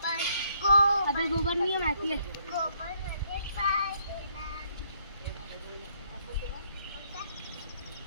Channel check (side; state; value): both; inverted; correlation -0.69